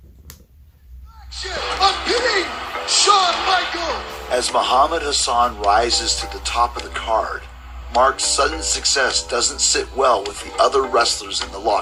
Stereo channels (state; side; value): identical; both; correlation 1.00